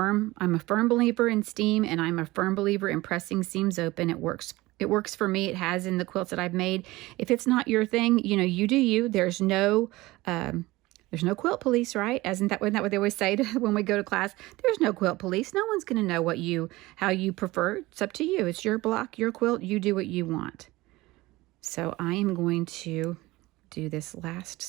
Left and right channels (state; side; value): quieter; left; 19.7 dB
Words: believer in steam, and I'm a firm believer in pressing seams open. It works. It works for me. It has in the quilts that I've made. If it's not your thing, you know, you do you. There's no quilt police, right? Isn't that what they always say when we go to class? There's no quilt police. No one's going to know how you prefer. It's up to you. It's your block, your quilt. You do what you want. So I am going to do this last